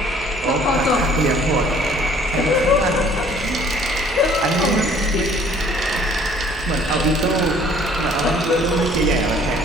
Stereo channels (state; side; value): normal; both; correlation 0.56